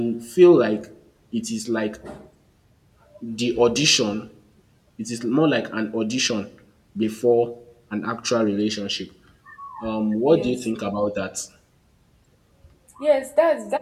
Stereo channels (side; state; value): both; identical; correlation 1.00